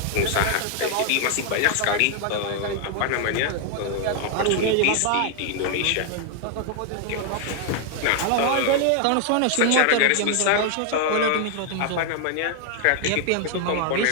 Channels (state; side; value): different; both; correlation 0.00